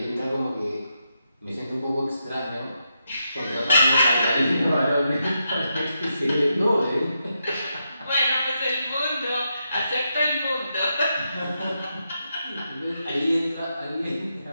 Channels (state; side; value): inverted; both; correlation -0.84